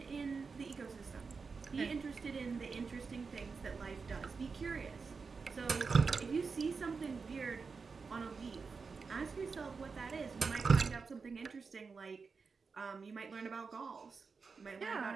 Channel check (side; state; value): left; quieter; 4.9 dB